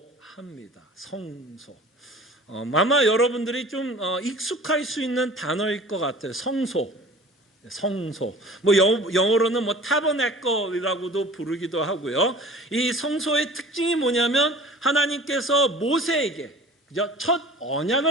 합니다. 성소. 아마 여러분들이 좀 익숙할 수 있는 단어일 것 같아요. 성소. 영어로는 타버네클이라고도 부르기도 하고요. 이 성소의 특징이 뭐냐면 하나님께서 모세에게 첫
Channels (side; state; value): both; normal; correlation 0.44